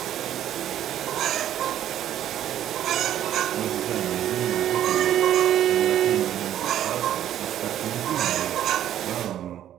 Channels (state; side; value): quieter; left; 11.4 dB